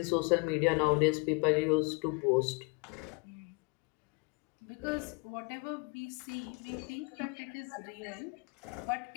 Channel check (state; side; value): quieter; right; 31.1 dB